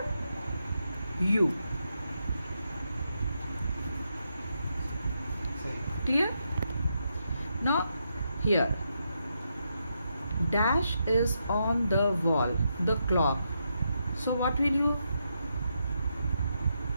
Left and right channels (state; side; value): inverted; both; correlation -0.82